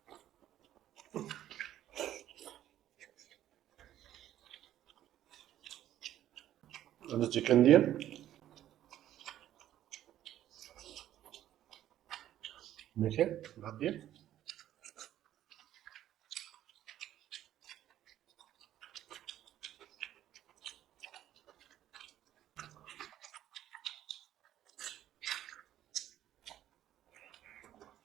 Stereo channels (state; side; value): quieter; left; 12.3 dB